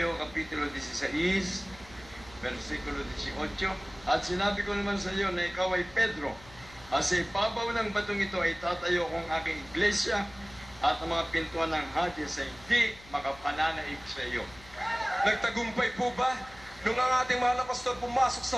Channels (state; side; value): noise; left; hum, 22 dB below the sound